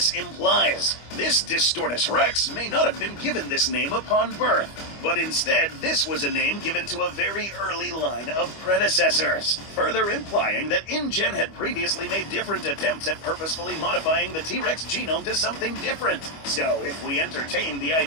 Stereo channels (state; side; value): late; right; 25 ms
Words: implies. This Distortus Rex may not have been given this name upon birth, but instead this was a name given to a very early line of predecessors, further implying that InGen had previously made different attempts at purposefully modifying the T-Rex genome to something different. So if we entertain the